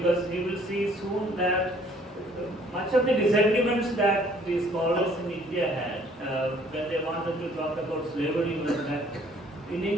we will see soon that much of the disagreements that the scholars in India had when they wanted to talk about slavery was that in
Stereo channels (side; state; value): both; normal; correlation 0.59